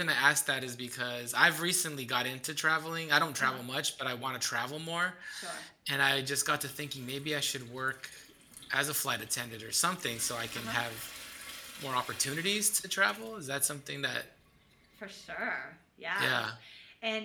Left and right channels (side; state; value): both; identical; correlation 1.00